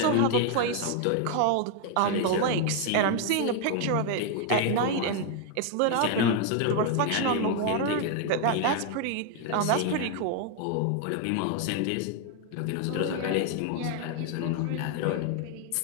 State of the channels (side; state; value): both; different; correlation 0.00